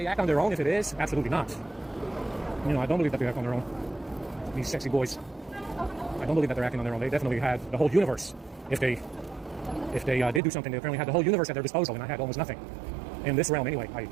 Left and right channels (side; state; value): left; drops out; at 10.4 s